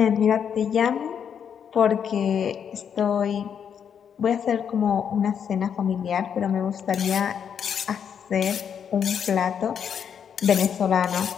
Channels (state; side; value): quieter; right; 7.8 dB